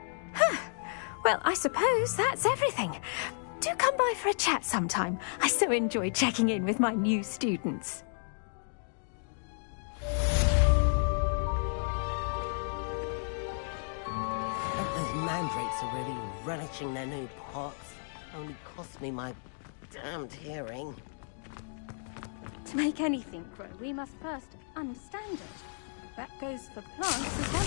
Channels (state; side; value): silent; right; digital silence